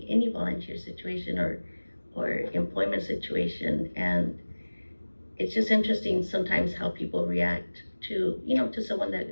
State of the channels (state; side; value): inverted; both; correlation -1.00